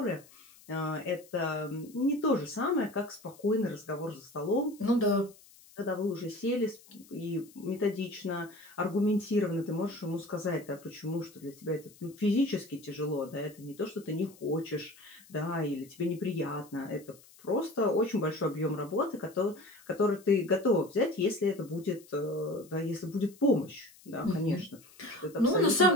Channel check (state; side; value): noise; left; hiss, 24 dB below the sound